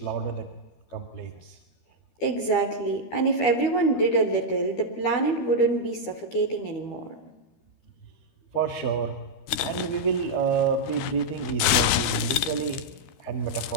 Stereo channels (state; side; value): late; right; 13 ms